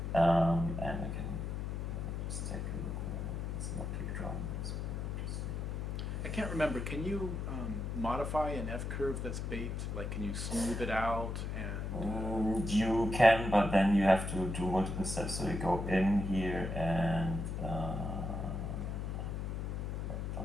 And I can just take a look. It's not kick drum. I can't remember. Can you modify an F-curve that's baked? Like, can you smooth it out? And you can, but then you have to do multiple steps. So you go in here and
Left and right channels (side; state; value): left; noise; hum, 3 dB below the sound